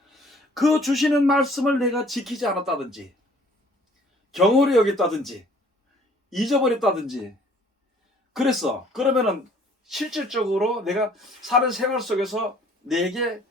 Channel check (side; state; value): both; normal; correlation 0.56